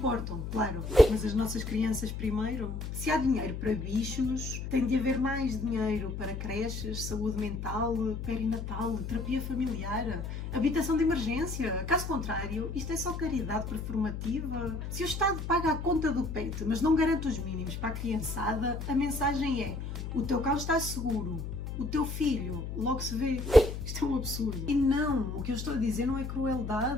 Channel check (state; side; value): noise; left; hum, 6 dB below the sound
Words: claro, mas as nossas crianças primeiro. Se há dinheiro para bichos, tem de haver mais dinheiro para creches, saúde mental, perinatal, terapia familiar, habitação de emergência. Caso contrário, isto é só caridade performativa. Se o Estado paga a conta do pet, mas não garante os mínimos para a criançada, a mensagem é: o teu cão está seguro, o teu filho logo se vê. Isto é um absurdo. E não, o que eu estou a dizer não é